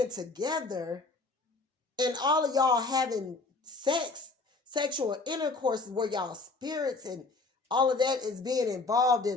together, and all of y'all having sexual intercourse where y'all spirits and all of that is being involved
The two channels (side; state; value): right; quieter; 3.6 dB